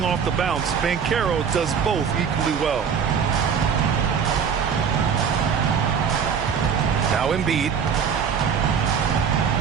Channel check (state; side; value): quieter; left; 6.9 dB